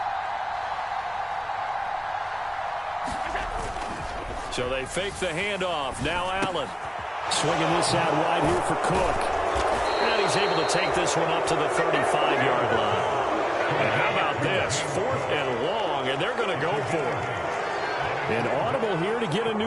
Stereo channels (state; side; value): identical; both; correlation 1.00